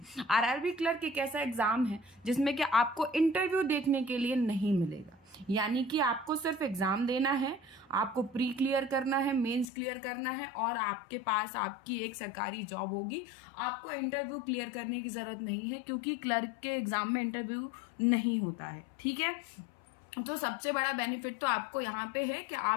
आरआरबी क्लर्क एक ऐसा एग्जाम है जिसमें कि आपको इंटरव्यू देखने के लिए नहीं मिलेगा, यानी कि आपको सिर्फ एग्जाम देना है, आपको प्री क्लियर करना है, मेंस क्लियर करना है और आपके पास आपकी एक सरकारी जॉब होगी। आपको इंटरव्यू क्लियर करने की जरूरत नहीं है क्योंकि क्लर्क के एग्जाम में इंटरव्यू नहीं होता है। ठीक है, तो सबसे बड़ा बेनिफिट तो आपको यहाँ पे है कि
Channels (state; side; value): drops out; right; at 9.7 s